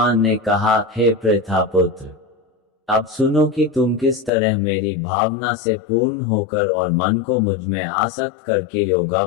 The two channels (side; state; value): right; drops out; at 4.3 s